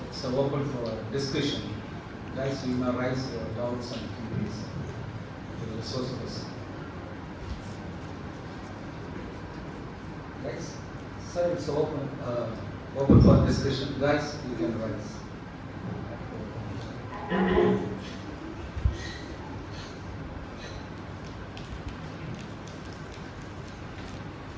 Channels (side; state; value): both; identical; correlation 1.00